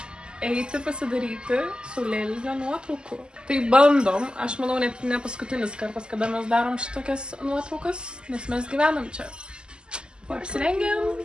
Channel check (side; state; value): left; late; 0.048 ms